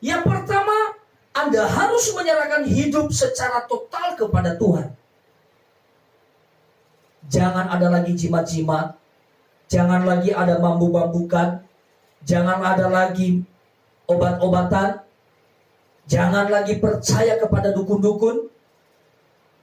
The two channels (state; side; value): identical; both; correlation 1.00